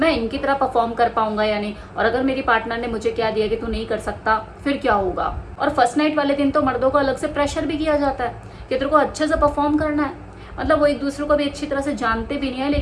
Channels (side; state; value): both; identical; correlation 1.00